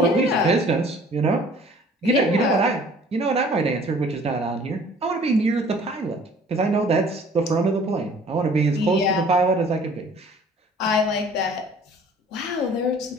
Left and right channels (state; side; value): normal; both; correlation 0.52